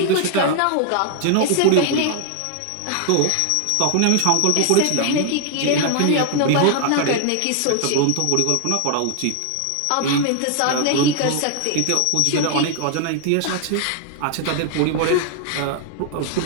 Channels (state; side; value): different; both; correlation 0.00